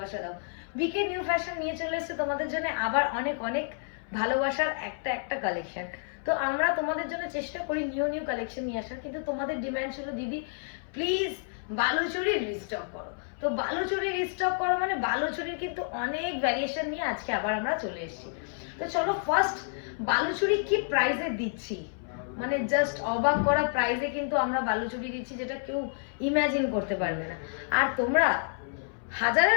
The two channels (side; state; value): right; silent; 58 dB below the other